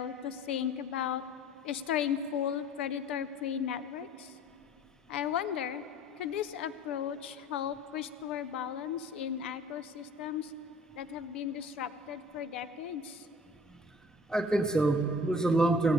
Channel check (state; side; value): normal; both; correlation 0.48